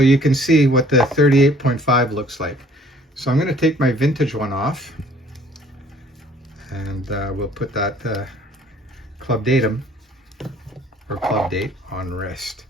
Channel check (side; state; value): both; normal; correlation 0.57